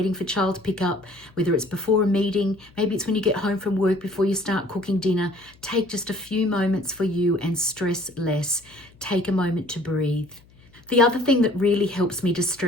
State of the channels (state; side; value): noise; left; hum, 27 dB below the sound